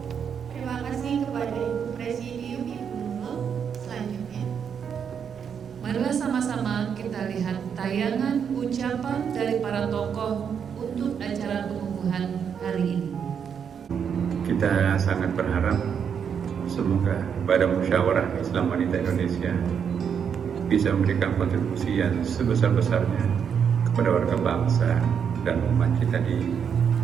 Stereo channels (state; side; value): quieter; left; 7.4 dB